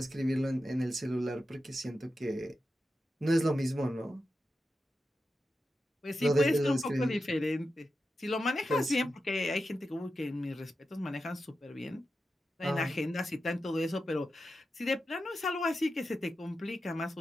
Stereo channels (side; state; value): both; normal; correlation 0.90